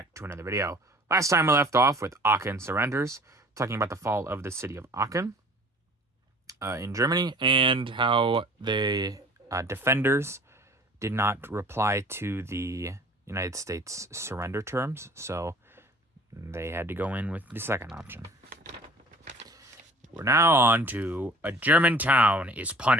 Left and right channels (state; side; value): normal; both; correlation 0.49